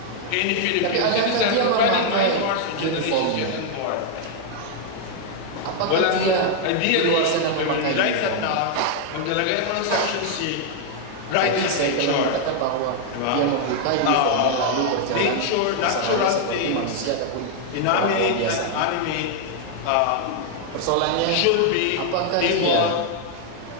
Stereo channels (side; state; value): both; different; correlation 0.00